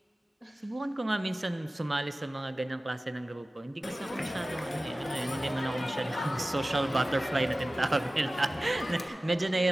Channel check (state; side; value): normal; both; correlation 0.97